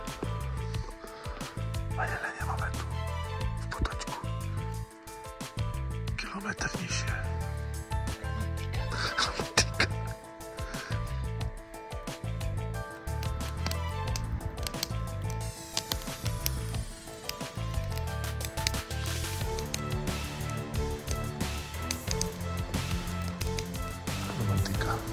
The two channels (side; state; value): both; identical; correlation 1.00